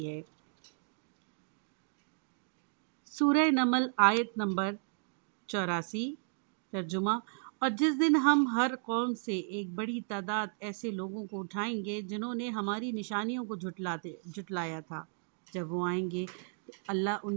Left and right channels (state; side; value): silent; left; digital silence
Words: ہے۔ سورہ نمل آیت نمبر 84 ترجمہ: اور جس دن ہم ہر قوم سے ایک بڑی تعداد ایسے لوگوں کو اٹھائیں گے جنہوں نے ہماری نشانیوں کو جھٹلایا تھا، جب وہ آئیں گے تو اللہ